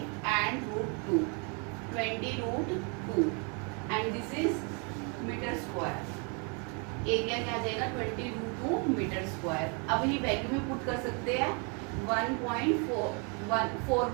and root 2, 20 root 2 and this is metre square. Area क्या आ जाएगा 20 रूट 2 मीटर स्क्वायर. अब ये वैल्यू में पुट कर सकते हैं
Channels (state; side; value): quieter; left; 35.4 dB